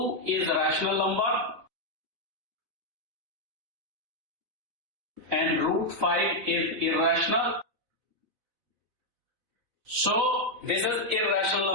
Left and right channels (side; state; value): left; late; 4.0 ms